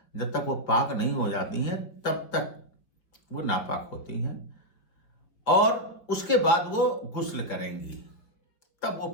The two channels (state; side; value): late; right; 4.6 ms